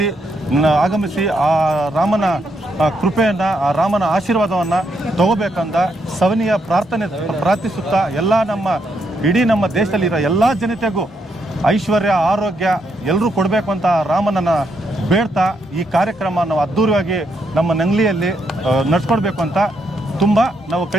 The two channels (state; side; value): normal; both; correlation 0.78